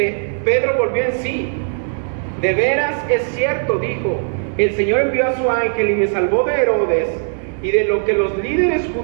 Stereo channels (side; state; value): left; silent; digital silence